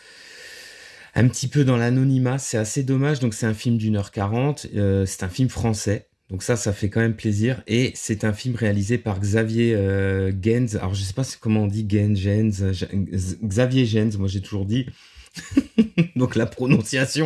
peu dans l'anonymat, c'est assez dommage. Donc c'est un film d'1h40, c'est un film français. Donc ça fait quand même plaisir. Et c'est un film réalisé par Xavier Gens. Alors je sais pas comment on dit Xavier Gens, moi j'ai toujours dit. Donc la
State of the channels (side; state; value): both; identical; correlation 1.00